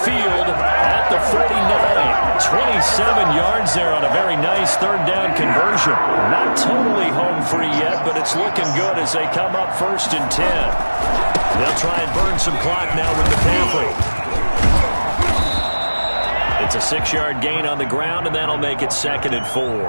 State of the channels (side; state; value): both; inverted; correlation -1.00